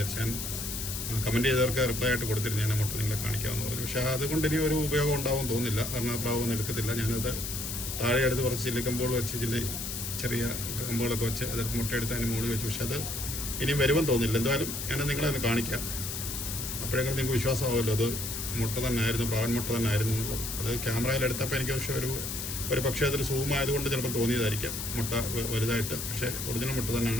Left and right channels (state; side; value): noise; left; hiss, 5 dB below the sound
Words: ഞാൻ കമൻറ്റ് ചെയ്തവർക്ക് റിപ്ലൈ ആയിട്ട് കൊടുത്തിരുന്നു, ഞാൻ ആ മുട്ട നിങ്ങളെ കാണിക്കാമെന്ന് പറഞ്ഞു. പക്ഷേ അതുകൊണ്ട് ഇനി ഒരു ഉപയോഗം ഉണ്ടാവും തോന്നുന്നില്ല. കാരണം ആ പ്രാവ് ഒന്നും എടുക്കത്തില്ല. ഞാനത് താഴെ എടുത്ത് കുറച്ച് ചില്ലിക്കമ്പോൾ വെച്ച് ചെറിയ കമ്പുകളൊക്കെ വെച്ച് അതെടുത്ത് മുട്ടയെടുത്ത് അതിന് മുകളിൽ വെച്ചു. പക്ഷെ അത് ഇനിയും വരുമെന്ന് തോന്നുന്നില്ല. എന്തായാലും ഞാനത് നിങ്ങളെ ഒന്ന് കാണിക്കാം. അപ്പോഴെങ്കിലും നിങ്ങൾക്ക് വിശ്വാസമാവുമല്ലോ അത് മുട്ട തന്നെ ആയിരുന്നു, പ്രാവൻ മുട്ട തന്നെ ആയിരുന്നു എന്നുള്ളത്. അത് ക്യാമറയിൽ എടുത്തപ്പോൾ എനിക്ക് പക്ഷേ ഒരു പക്ഷേ അതൊരു സൂം ആയതുകൊണ്ട് ചിലപ്പോൾ തോന്നിയതായിരിക്കാം മുട്ട വലുതായിട്ട്. പക്ഷേ ഒറിജിനൽ മുട്ട